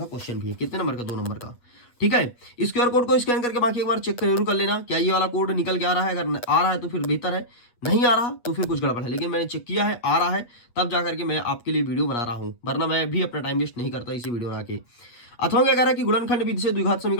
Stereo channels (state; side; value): late; right; 8.3 ms